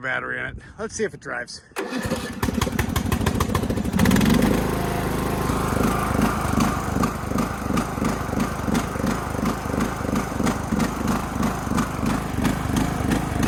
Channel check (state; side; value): identical; both; correlation 1.00